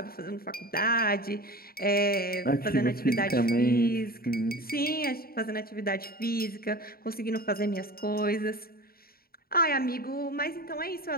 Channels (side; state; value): right; late; 0.43 ms